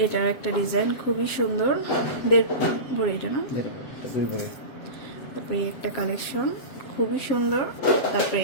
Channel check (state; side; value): late; right; 7.6 ms